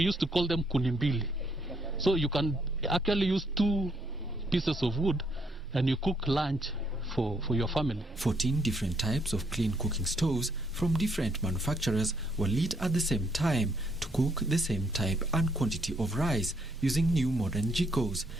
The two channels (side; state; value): both; normal; correlation 0.72